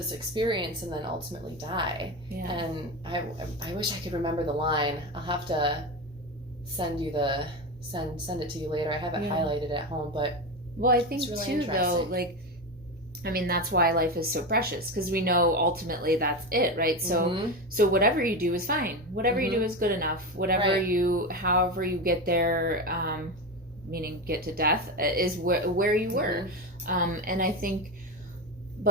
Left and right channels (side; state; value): both; normal; correlation 0.19